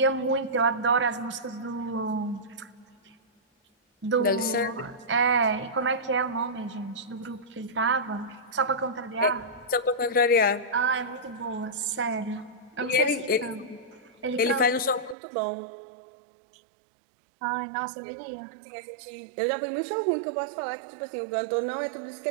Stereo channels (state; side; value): drops out; left; at 15.2 s